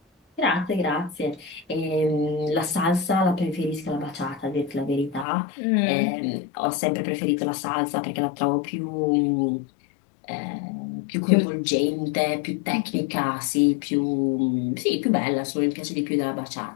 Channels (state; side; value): drops out; right; at 5.2 s